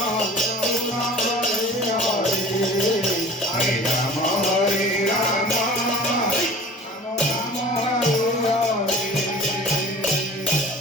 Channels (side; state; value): both; normal; correlation 0.42